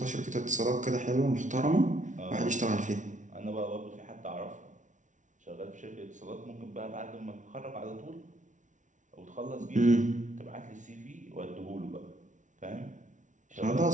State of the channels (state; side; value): late; left; 0.37 ms